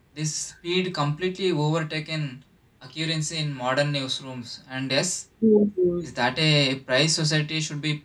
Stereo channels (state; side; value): identical; both; correlation 1.00